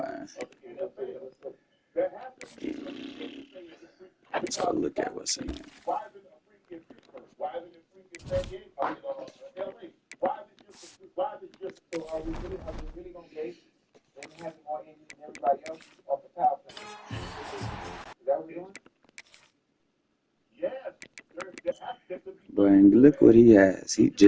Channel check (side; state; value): both; identical; correlation 1.00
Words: of the NFL. That happens. let's go look at what's in there. Why isn't a freak in Pittsburgh? Why isn't it a freak in San Diego? LA? Why is it just so are we really gonna base them having more injuries than everybody else off the power plant? Is that what we're doing? yes? But look what he has. He